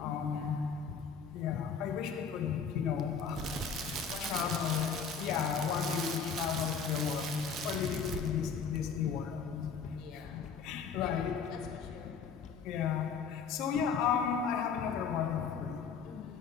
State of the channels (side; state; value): right; quieter; 6.0 dB